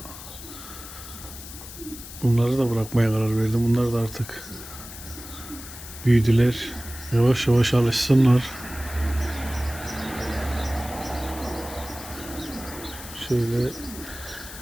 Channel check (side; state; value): left; noise; hiss, 13 dB below the sound